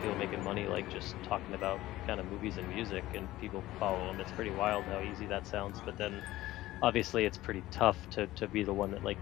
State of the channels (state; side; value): quieter; right; 16.4 dB